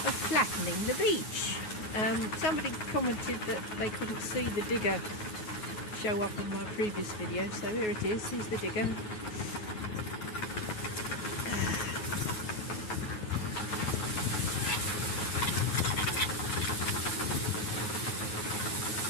of Flattening the Beach. Somebody commented that they couldn't see the digger show up in my previous video, so here it is, here's the digger.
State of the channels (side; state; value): right; late; 9.3 ms